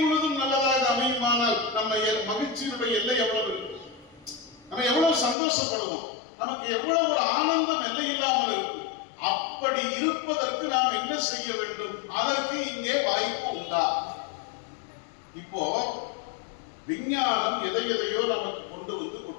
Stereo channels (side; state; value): right; drops out; at 5.4 s